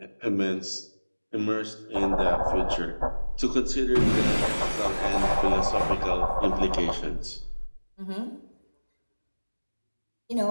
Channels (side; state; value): both; inverted; correlation -1.00